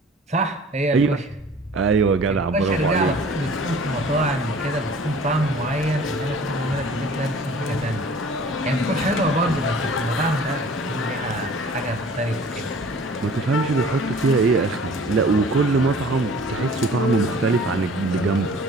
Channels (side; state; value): both; normal; correlation 0.48